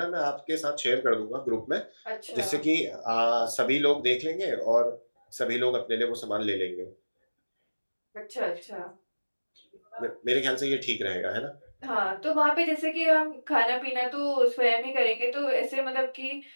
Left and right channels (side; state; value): both; inverted; correlation -1.00